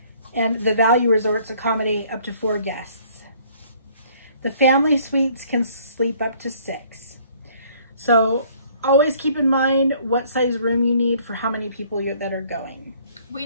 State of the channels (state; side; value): inverted; both; correlation -0.59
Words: and the value resorts accommodate up to 4 guests. The family suites can sleep up to 6. So always keep in mind what size room you need for how many people that are going. We